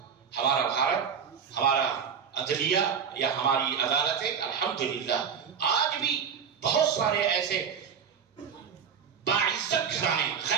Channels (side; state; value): left; quieter; 7.1 dB